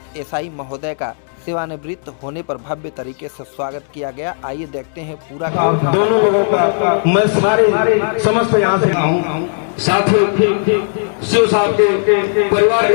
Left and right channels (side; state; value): right; silent; digital silence